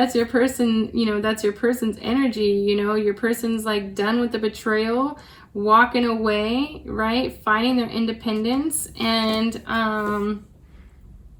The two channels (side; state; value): both; identical; correlation 1.00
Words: your person, you know, that's your person's energy, you know, your person's like done with the betrayal, walking away, right? Finding their independence. And,